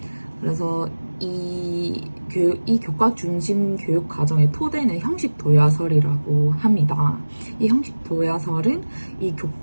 그래서 이 교과 중심 교육 과정의 토대는 형식 도야설이라고 합니다. 이 형식 도야설은 이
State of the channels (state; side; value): inverted; both; correlation -1.00